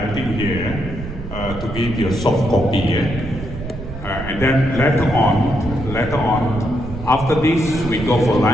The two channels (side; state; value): right; noise; rumble, 10 dB below the sound